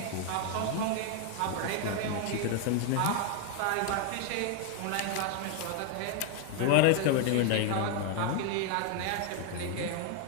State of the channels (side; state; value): both; different; correlation 0.00